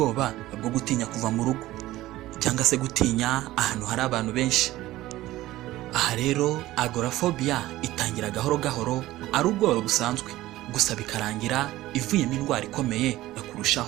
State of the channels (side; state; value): left; quieter; 16.4 dB